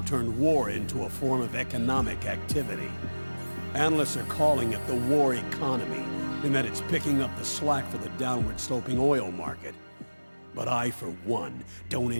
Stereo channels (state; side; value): inverted; both; correlation -1.00